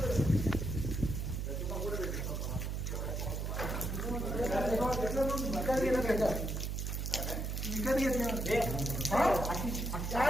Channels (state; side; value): noise; right; hum, 2 dB below the sound